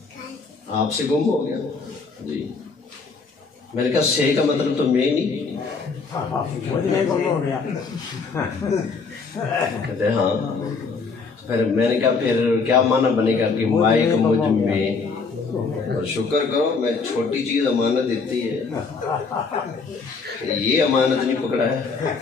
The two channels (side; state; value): right; quieter; 4.7 dB